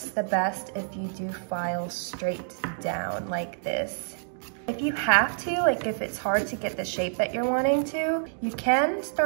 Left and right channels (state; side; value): silent; left; digital silence